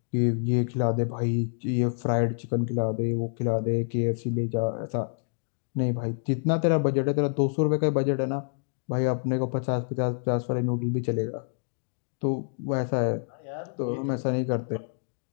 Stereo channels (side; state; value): right; silent; digital silence